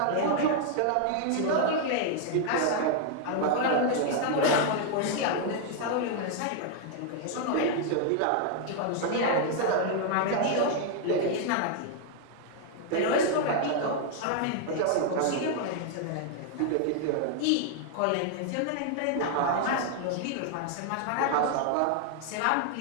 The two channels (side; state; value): both; different; correlation 0.00